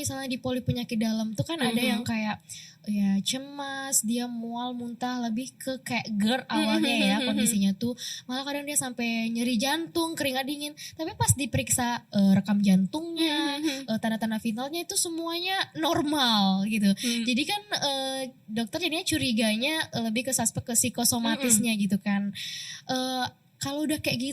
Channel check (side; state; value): both; identical; correlation 1.00